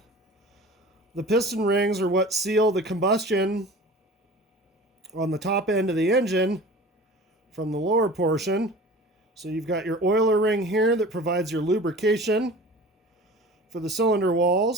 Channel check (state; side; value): normal; both; correlation 0.40